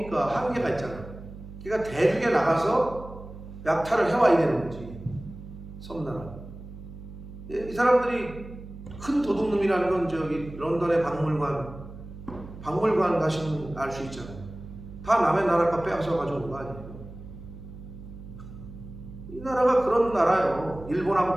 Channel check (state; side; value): noise; right; hum, 14 dB below the sound